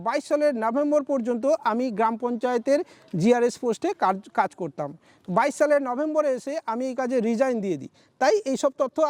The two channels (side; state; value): both; identical; correlation 1.00